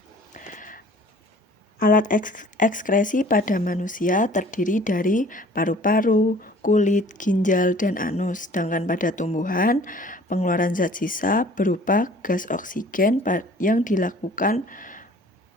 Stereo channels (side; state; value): both; normal; correlation 0.50